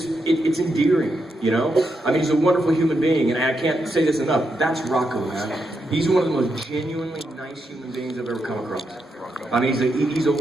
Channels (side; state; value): both; normal; correlation 0.83